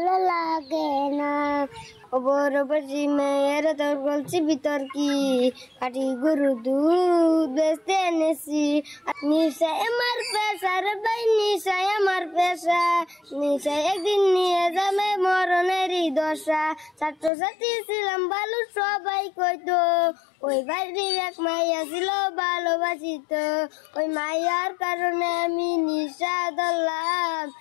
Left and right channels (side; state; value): right; drops out; at 17.3 s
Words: লাগে না। ওপর বসি মেয়ের তোর বলছি ভিতর কি কাটি গরু দুধ বেচতে এনেছি। নিশায় আমার পেশা রে ভাই, নিশায় আমার পেশা, নিশায় একদিন নিয়ে যাবে মরণেরই দশা। ছাত্রছাত্রী ছিলাম ভালো সবাই কইতো, ওই বাড়ির এক মাইয়া ছিল ভালোবাসিত। ওই মাইয়ার কারণে আমি নিশা ধরলাম,